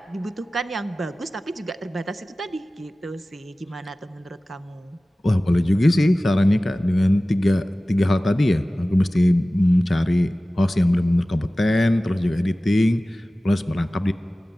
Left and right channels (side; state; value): both; normal; correlation 0.97